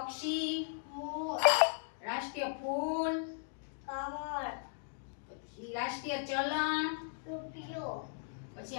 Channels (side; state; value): right; silent; digital silence